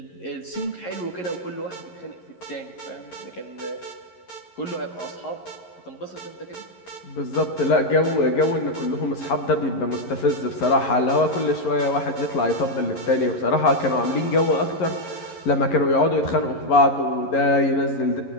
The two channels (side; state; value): right; late; 11 ms